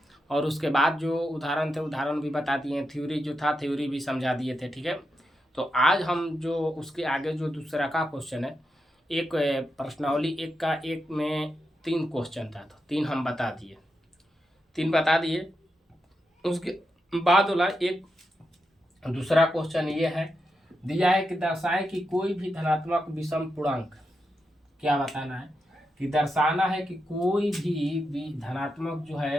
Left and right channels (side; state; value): both; normal; correlation 0.86